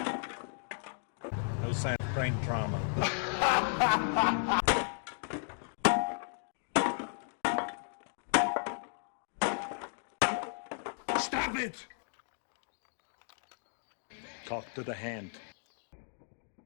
No sign of brain trauma. Stop it! Talk to the hand.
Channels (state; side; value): silent; right; digital silence